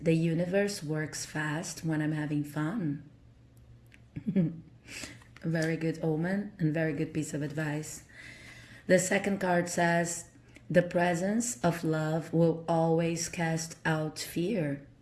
universe works fast when I'm having fun. A very good omen and very good piece of advice. The second card says, the presence of love will always cast out fear.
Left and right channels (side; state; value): both; identical; correlation 1.00